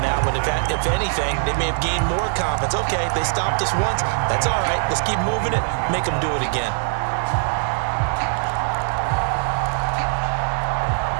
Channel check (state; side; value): silent; left; 65 dB below the other